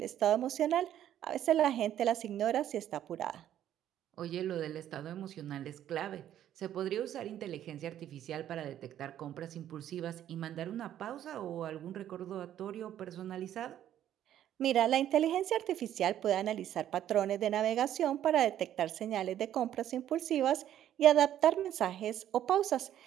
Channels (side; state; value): left; quieter; 11.3 dB